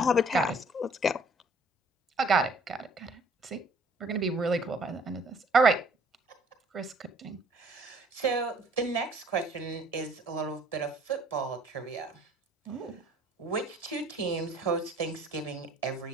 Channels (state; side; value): normal; both; correlation 0.57